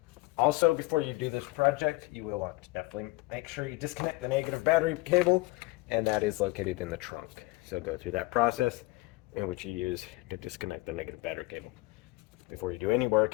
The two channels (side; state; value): right; quieter; 21.3 dB